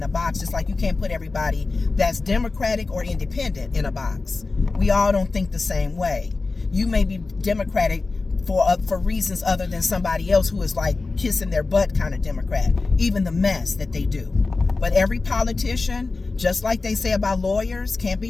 a box, just like you can't put everybody that's Democratic or independent in a box. We all don't think the same way. You may be Democratic for reasons other than somebody else who is like kissing their butt kind of Democrat, even the mess that they do. But every politician, just like they say about lawyers, can't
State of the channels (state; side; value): quieter; right; 3.7 dB